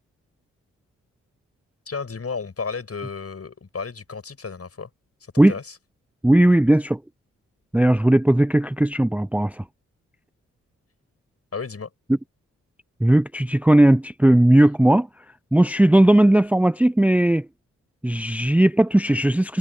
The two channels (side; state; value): both; normal; correlation 0.97